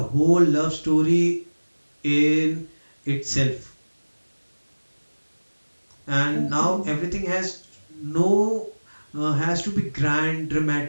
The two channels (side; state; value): both; inverted; correlation -1.00